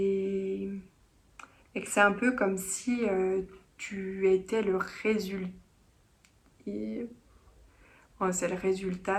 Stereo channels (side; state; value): both; identical; correlation 1.00